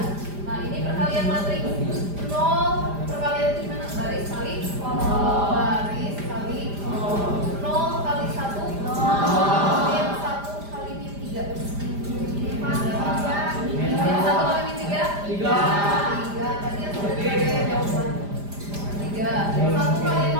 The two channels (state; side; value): late; left; 5.0 ms